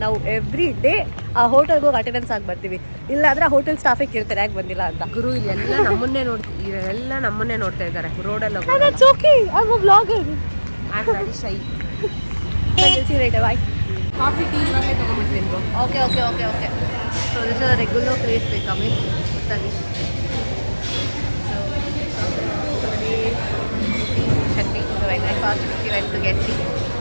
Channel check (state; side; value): inverted; both; correlation -1.00